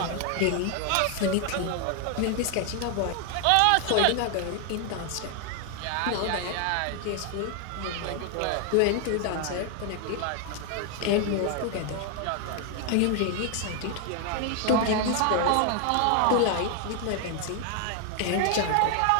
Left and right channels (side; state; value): both; different; correlation 0.00